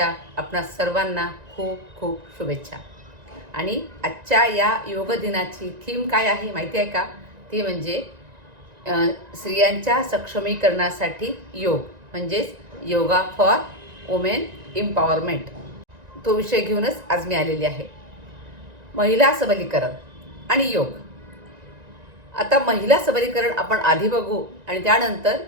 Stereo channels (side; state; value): left; late; 1.9 ms